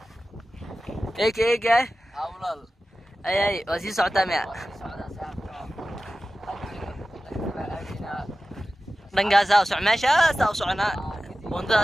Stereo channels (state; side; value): normal; both; correlation 0.95